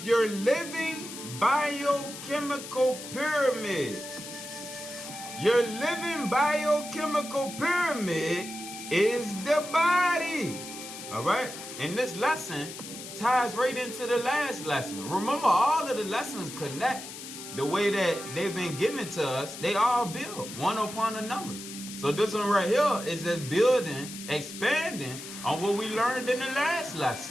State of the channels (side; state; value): left; noise; hiss, 11 dB below the sound